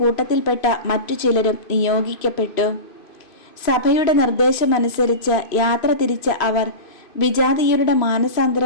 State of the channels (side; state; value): right; late; 2.5 ms